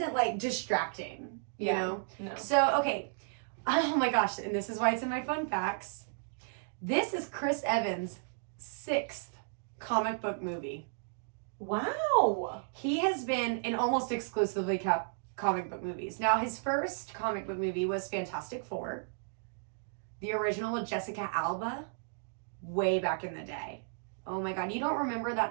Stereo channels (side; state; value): left; silent; digital silence